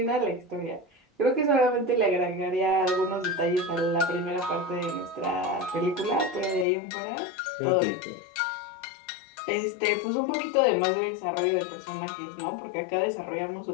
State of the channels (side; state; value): right; drops out; at 6.7 s